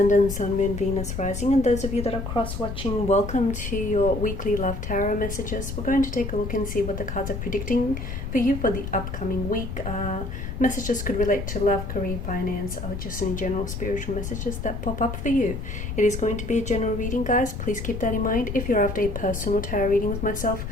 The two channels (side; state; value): left; noise; rumble, 6 dB below the sound